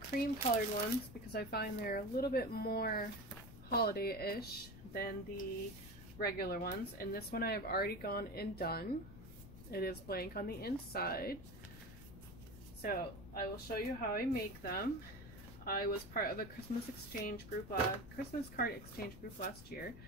colored ones because I find they're a little bit more holiday-ish than the regular ones. And this one I have already gone and done. It is blank on the inside, so I will show you how I make them. I was part of a Christmas card exchange group last year,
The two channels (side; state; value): left; noise; rumble, 15 dB below the sound